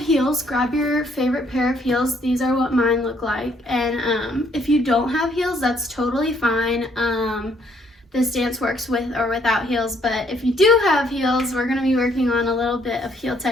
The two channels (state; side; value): normal; both; correlation 0.67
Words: grab your favorite pair of heels. These are what mine look like. And if you don't have heels, that's totally fine. This dance works with or without heels, but if you do have heels, we're gonna be working on a little bit of heel